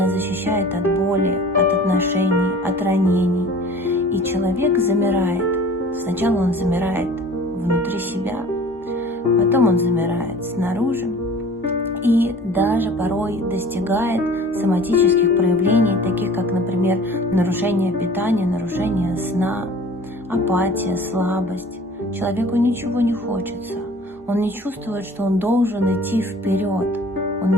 защищает от боли, от отношений, от ранений. И человек замирает. Сначала он замирает внутри себя, потом он замирает снаружи и даже порой достигает соматических проявлений, таких как, например, нарушение питания, нарушение сна, апатия, слабость. Человеку ничего не хочется. Он не чувствует, что он должен идти вперед. Он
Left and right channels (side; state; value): both; normal; correlation 0.46